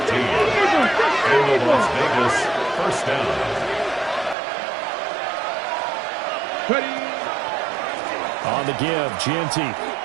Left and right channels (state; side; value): drops out; left; at 4.4 s